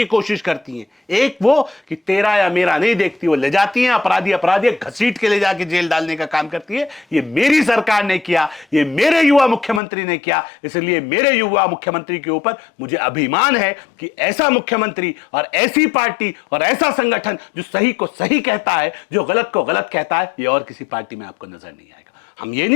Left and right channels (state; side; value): drops out; right; at 9.8 s